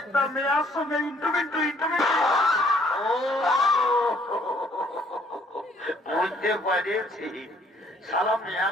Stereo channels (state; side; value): normal; both; correlation 0.63